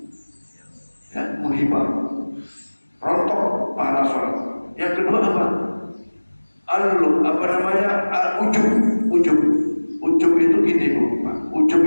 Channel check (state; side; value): inverted; both; correlation -1.00